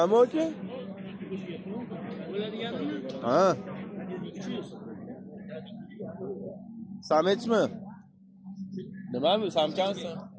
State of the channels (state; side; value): identical; both; correlation 1.00